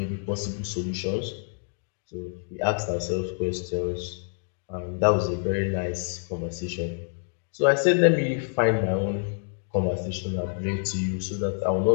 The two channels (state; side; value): silent; right; 60 dB below the other